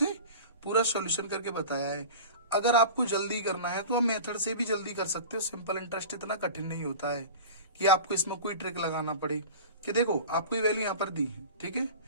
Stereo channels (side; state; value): both; inverted; correlation -0.35